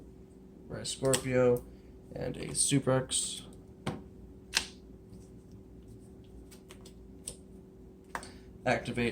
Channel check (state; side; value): identical; both; correlation 1.00